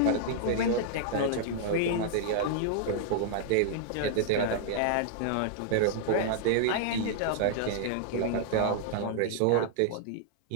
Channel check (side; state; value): both; different; correlation -0.01